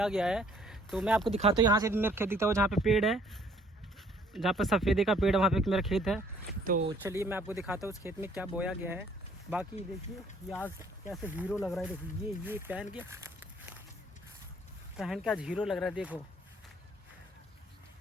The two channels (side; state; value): both; normal; correlation 0.61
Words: गया है। तो मैं आपको दिखाता हूँ। यहाँ से मेरा खेत दिखता है, जहाँ पे पेड़ है, जहाँ पर सफ़ेदे का पेड़ है वहाँ पे मेरा खेत है। तो चलिए मैं आपको दिखाता हूँ उस खेत में क्या बोया गया है। बाकी देखिए ये आज कैसे हीरो लग रहा है। देखिए ये पहन के आज हीरो लग रहा है। देखो